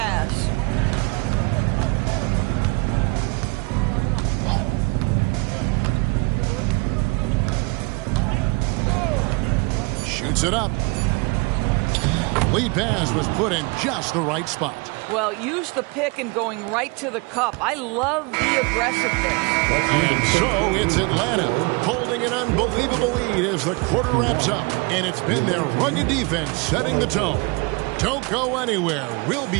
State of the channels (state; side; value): quieter; left; 28.4 dB